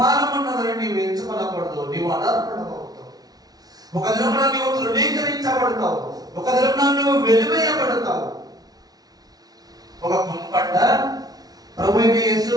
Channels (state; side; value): late; left; 0.19 ms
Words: ఉన్నదని నీవు ఎంచుకోనకూడదు. నీవు అనర్హుడవుతావు. ఒక దినమున నీవు తృణీకరించబడతావు, ఒక దినమున నువ్వు వెలివేయబడతావు. ఒక కుంపట ప్రభువైన